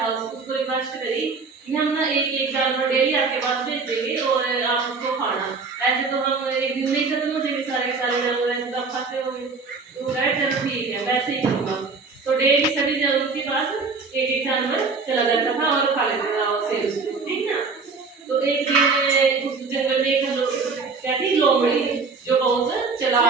उसको रिक्वेस्ट करी कि हम ना एक एक जानवर डेली आपके पास भेज देंगे और आप उसको खाना। ऐसे तो हम एक दिन में ही खत्म हो जाएंगे सारे के सारे जानवर, ऐसे तो आप खाते होंगे। तो कहा चलो ठीक है, वैसे ही करूँगा। तो डेली सभी जानवरों के पास एक एक जानवर चला जाता था और खा लेता था शेर उसको, ठीक ना? तो एक दिन उस जंगल में एक क्या थी? लोमड़ी, जो बहुत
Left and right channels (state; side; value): quieter; left; 4.5 dB